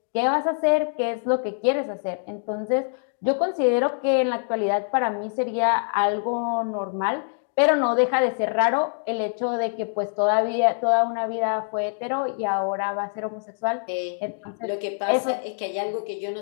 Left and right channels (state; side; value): silent; right; digital silence